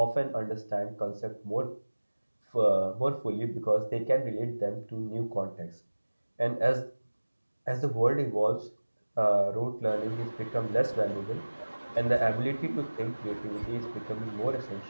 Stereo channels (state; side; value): inverted; both; correlation -1.00